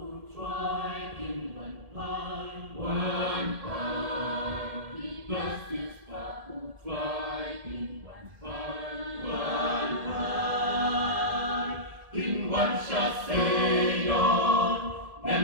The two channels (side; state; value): left; late; 1.7 ms